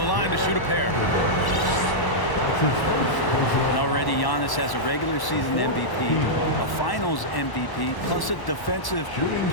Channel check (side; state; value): right; late; 1.1 ms